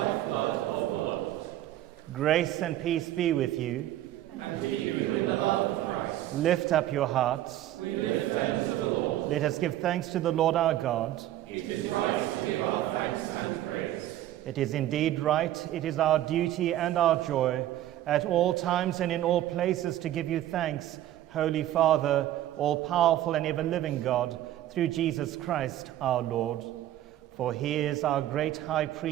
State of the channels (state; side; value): quieter; left; 13.5 dB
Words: of the Lord. Grace and peace be with you. And keep you in the love of Christ. Lift up your hearts. We lift them to the Lord. Let us give thanks to the Lord our God. It is right to give our thanks and praise. It is indeed right, it is our duty and our joy, at all times and in all places, to give you thanks, Holy Father, all-powerful and ever-living God, through Jesus Christ our Lord. For he is our great high